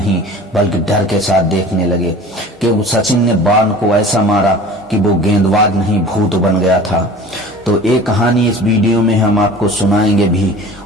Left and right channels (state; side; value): normal; both; correlation 0.41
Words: बल्कि डर के साथ देखने लगे कि सचिन ने वॉर्न को ऐसा मारा कि वो गेंदबाज नहीं भूत बन गया था। तो एक कहानी इस वीडियो में हम आपको सुनाएंगे भी